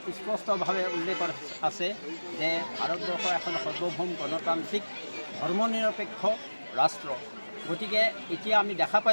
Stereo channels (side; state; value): both; inverted; correlation -1.00